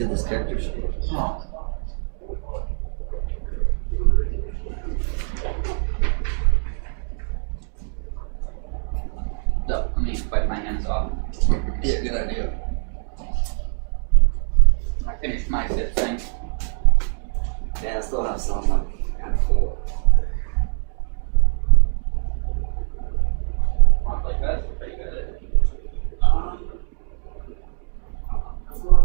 this character sheet. So, let me wipe my hands off. Yeah, good idea. I finished my zip thing. Yeah, I still have some. I'm kind of full. Want like that? Pretty good at it. Let's go on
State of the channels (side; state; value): left; silent; 61 dB below the other